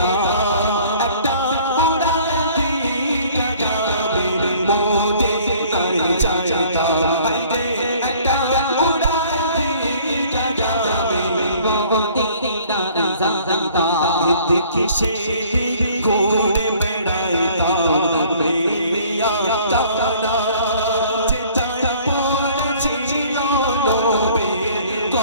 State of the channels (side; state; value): both; inverted; correlation -0.54